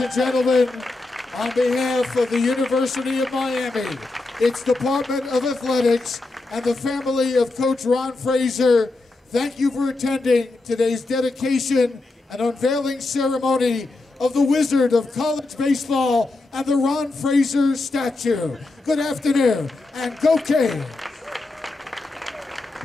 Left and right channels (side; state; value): right; quieter; 3.2 dB